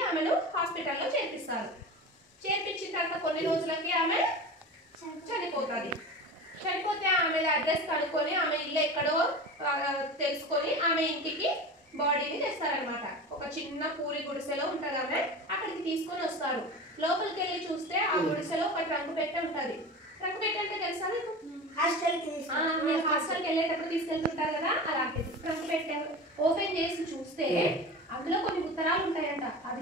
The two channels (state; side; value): normal; both; correlation 0.31